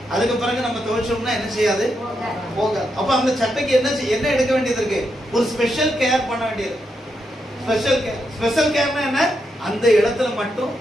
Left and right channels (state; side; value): normal; both; correlation 0.82